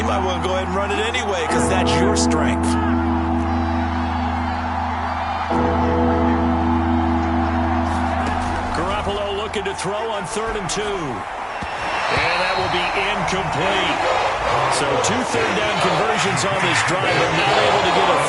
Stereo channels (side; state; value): both; identical; correlation 1.00